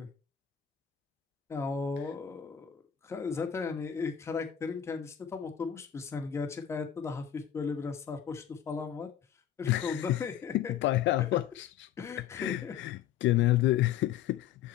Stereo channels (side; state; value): right; quieter; 9.8 dB